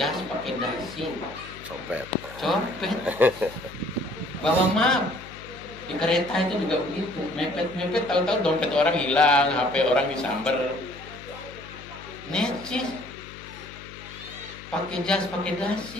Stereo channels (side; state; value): left; noise; hum, 17 dB below the sound